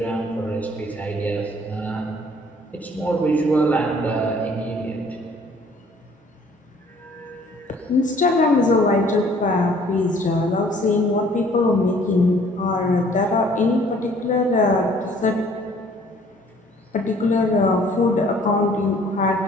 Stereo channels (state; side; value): normal; both; correlation 0.57